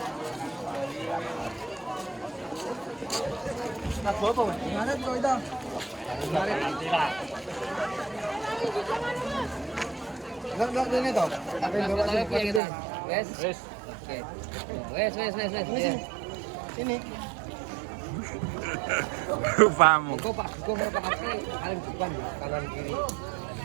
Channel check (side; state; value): left; drops out; at 12.6 s